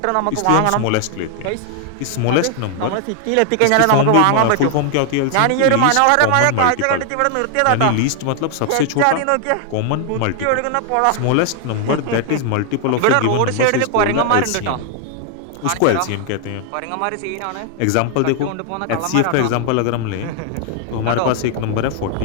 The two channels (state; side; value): different; both; correlation 0.00